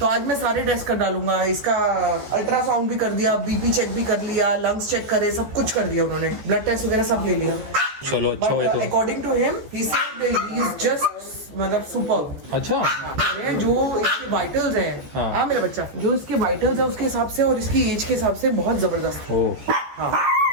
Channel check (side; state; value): left; late; 14 ms